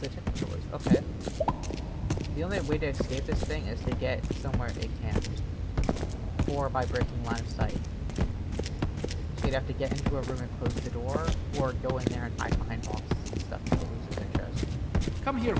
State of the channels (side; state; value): both; identical; correlation 1.00